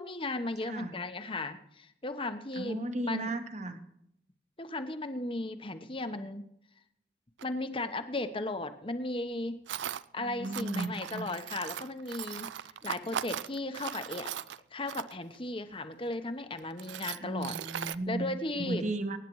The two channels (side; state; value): both; normal; correlation 0.39